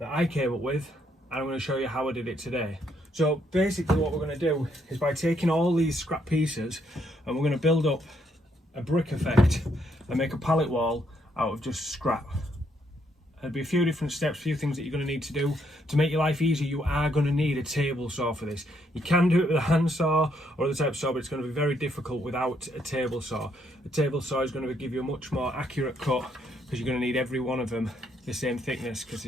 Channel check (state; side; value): normal; both; correlation 0.73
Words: I came up with and I'm going to show you how I did it today. So basically what we're going to do is, by taking all these scrap pieces, and we're going to build up a brick effect and make a pallet wall out of just scrap. There'll be a few different steps, a few things that you're going to need to do. To make your life easy, you are going to need a table saw for this. You can do it with a hand saw or other type of saw, but it's going to be very difficult without a table saw. A table saw is going to give you a much more accurate cut, because you're going to need every one of them the same thickness, because